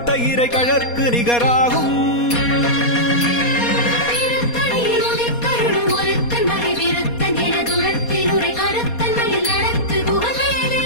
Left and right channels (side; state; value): right; late; 4.2 ms